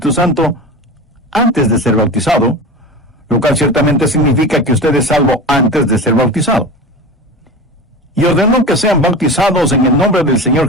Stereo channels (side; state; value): both; normal; correlation 0.29